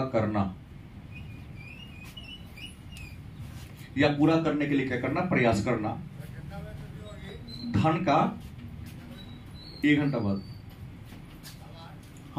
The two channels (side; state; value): both; identical; correlation 1.00